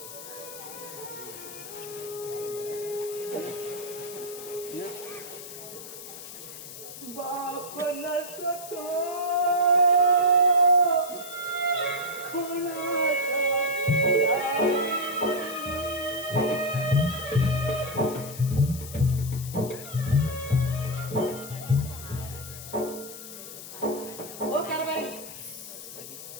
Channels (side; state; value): left; noise; hiss, 12 dB below the sound